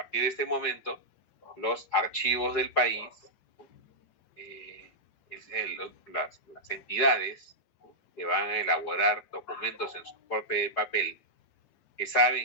de este momento, los archivos del país, las entidades que van a elaborar documentos en soporte de papel, que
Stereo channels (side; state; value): right; late; 4.9 ms